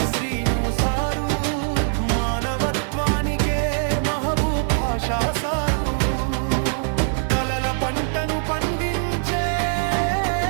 శ్రీను సారు, మానవత్వానికే మహబూబ్ భాషా సారు, కలల పంటను పండించే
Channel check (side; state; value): left; silent; digital silence